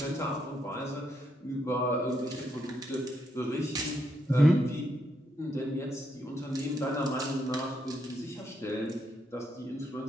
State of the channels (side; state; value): both; normal; correlation 0.78